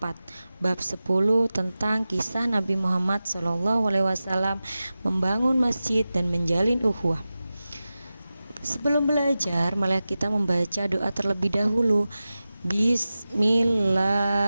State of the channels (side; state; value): both; inverted; correlation -0.95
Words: bab 10 tentang kisah Nabi Muhammad SAW membangun masjid dan menjalin ukhuwah. Sebelum belajar, mari kita membaca doa terlebih dahulu.